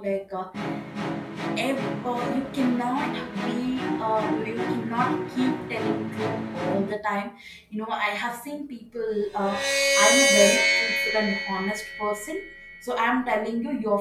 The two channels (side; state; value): both; identical; correlation 1.00